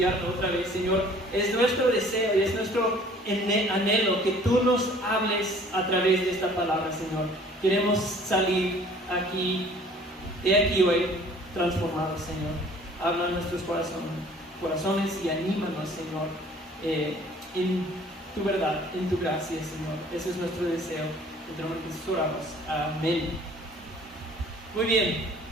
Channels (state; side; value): normal; both; correlation 0.53